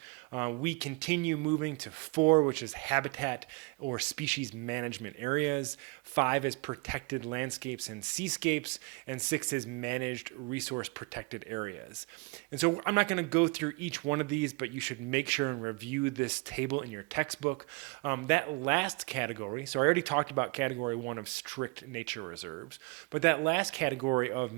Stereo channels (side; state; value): left; quieter; 28.4 dB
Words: We continue moving to 4, which is habitat or species management areas. 5 is protected landscapes and seascapes, and 6 is managed resource protected areas. And so I'm not going to go through each one of these, but you should make sure and review this table in your textbook. That last category, so I already talked about category 1 of strict nature reserves, but that last category of